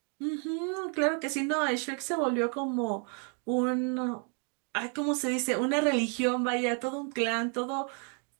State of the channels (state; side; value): quieter; left; 38.7 dB